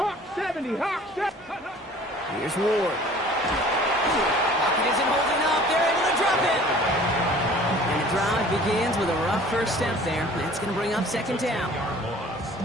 70, Hawk 70. Here's Ward. Pocket isn't holding up. They're able to drop it. And the drive begins with a rough first step there. That's going to bring up 2nd down.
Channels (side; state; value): both; normal; correlation 0.49